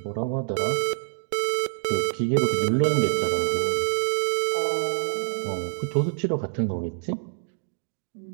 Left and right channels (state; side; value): silent; left; digital silence